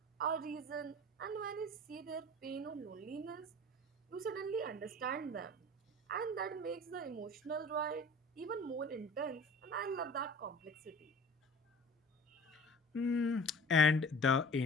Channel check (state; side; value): normal; both; correlation 0.42